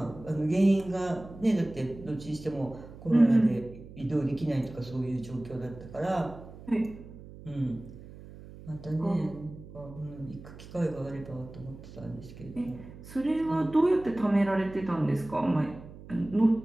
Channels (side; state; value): right; noise; hum, 16 dB below the sound